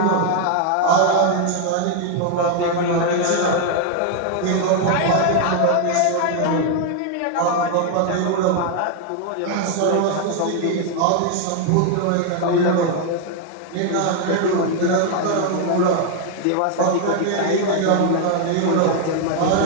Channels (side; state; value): both; different; correlation 0.00